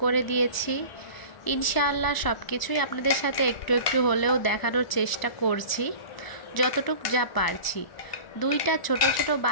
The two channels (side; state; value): right; late; 1.0 ms